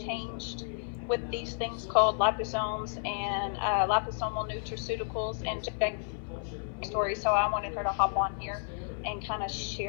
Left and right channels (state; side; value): silent; right; 57 dB below the other